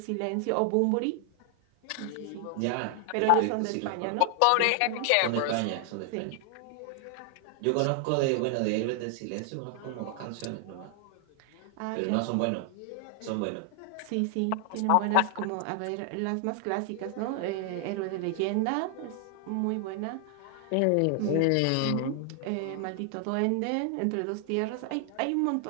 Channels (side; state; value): both; different; correlation 0.00